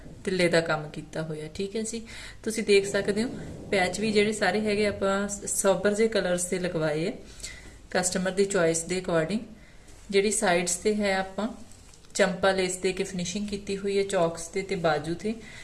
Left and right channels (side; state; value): both; identical; correlation 1.00